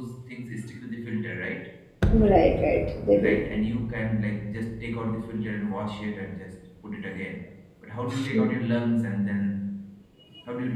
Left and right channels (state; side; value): identical; both; correlation 1.00